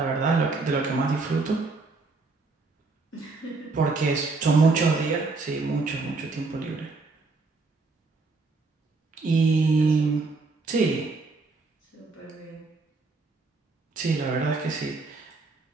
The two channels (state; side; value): quieter; left; 3.8 dB